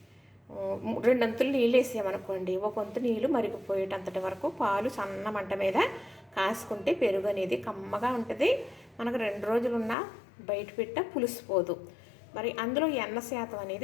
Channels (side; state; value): right; drops out; at 10.0 s